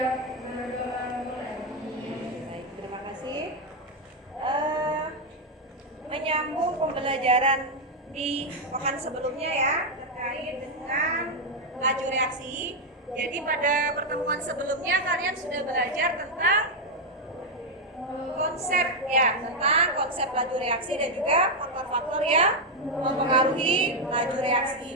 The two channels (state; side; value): normal; both; correlation 0.02